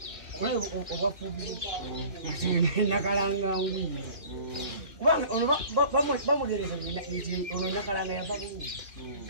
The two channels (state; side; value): late; left; 3.0 ms